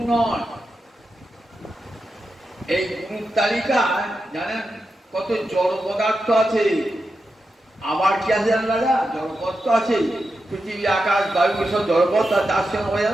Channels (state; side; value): normal; both; correlation 0.89